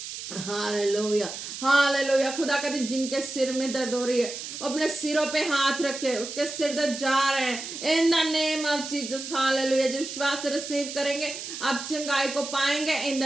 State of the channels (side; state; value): right; noise; hiss, 8 dB below the sound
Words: हालेलुया। हालेलुया। खुदा कहते जिनके सिर में दर्द हो रही है अपने सिरों पे हाथ रखे, उसके सिर दर्द जा रहे हैं in the name of Jesus. Hallelujah. जब विश्वास रिसीव करेंगे आप चंगाई को पाएंगे इन